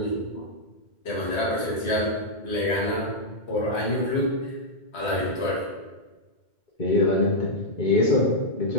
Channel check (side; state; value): right; late; 2.1 ms